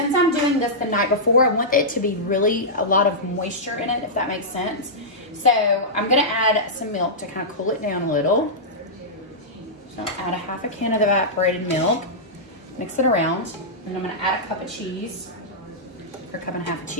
I'm doing this the night before, I want it to be really a lot of moisture in it, if that makes sense. So I'm gonna add some milk to kind of cool it down a little. So add a half a can of evaporated milk, mix it around, and I'm gonna add a cup of cheese, or a cup and a half of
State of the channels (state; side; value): normal; both; correlation -0.12